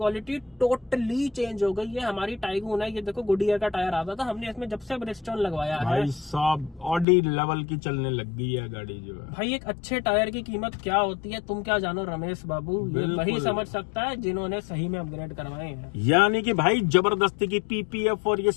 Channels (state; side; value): drops out; right; at 7.1 s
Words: टोटली चेंज हो गई है। हमारी टाइगून है, ये देखो गुडियर का टायर आता था, हमने इसमें जब से ब्रिजस्टोन लगवाया है भाई साहब ऑडी लेवल की चलने लग गई है गाड़ी जो है। भाई एक अच्छे टायर की कीमत क्या होती है तुम क्या जानो रमेश बाबू, ये वही समझ सकता है जिन्होंने सही में अपग्रेड करवाए हैं। यानी कि भाई जबरदस्ती की पीपीएफ और ये